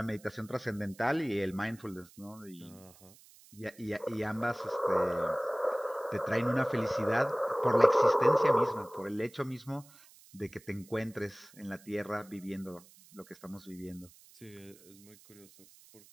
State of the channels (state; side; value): noise; right; hiss, 24 dB below the sound